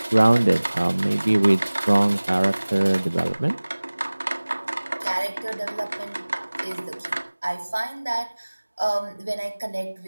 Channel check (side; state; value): both; inverted; correlation -1.00